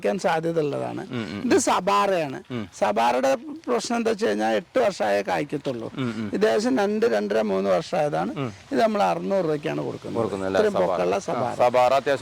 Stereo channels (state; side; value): identical; both; correlation 1.00